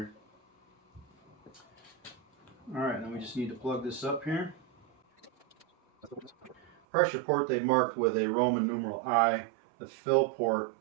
Alright, then we just need to plug this up here. Pressure port they've marked with a Roman numeral I. The fill port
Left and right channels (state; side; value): drops out; left; at 6.8 s